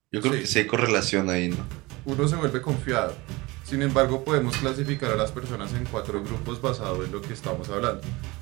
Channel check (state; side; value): quieter; left; 22.6 dB